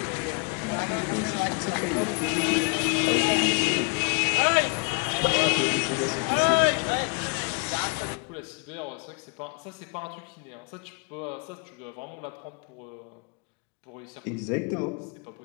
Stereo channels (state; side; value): quieter; right; 35.2 dB